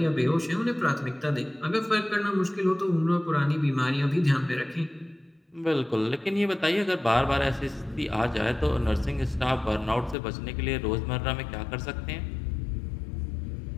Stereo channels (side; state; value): right; drops out; at 10.2 s